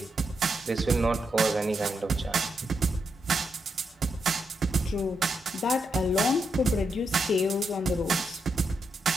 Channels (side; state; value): both; normal; correlation 0.82